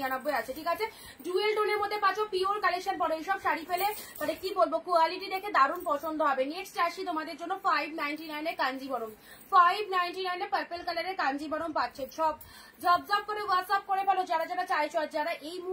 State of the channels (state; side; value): identical; both; correlation 1.00